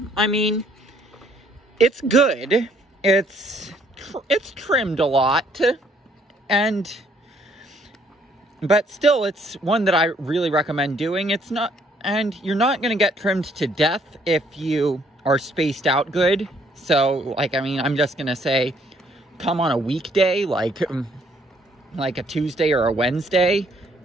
I mean, it's good. It's trimmed a lot. But still, it's one that I really recommend doing. And you're not going to get trimmed to death if you are spaced out good. So, like, I mean, I'm just going to say, come on a weekday, like a Tuesday or a Wednesday,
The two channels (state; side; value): normal; both; correlation 0.65